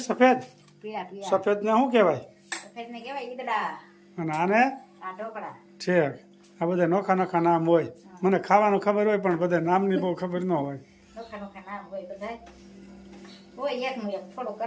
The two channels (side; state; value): both; identical; correlation 1.00